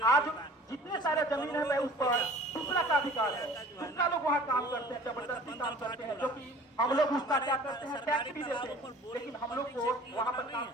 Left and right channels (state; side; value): normal; both; correlation 0.47